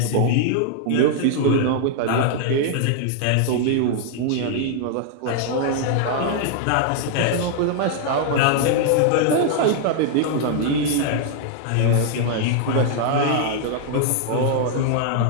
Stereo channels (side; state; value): both; different; correlation 0.00